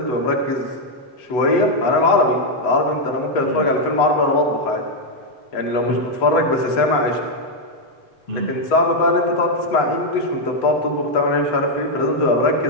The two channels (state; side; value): late; right; 8.1 ms